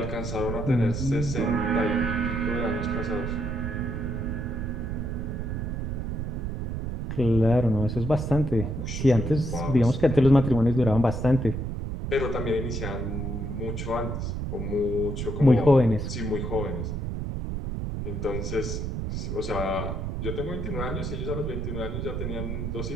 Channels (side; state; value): right; noise; rumble, 3 dB below the sound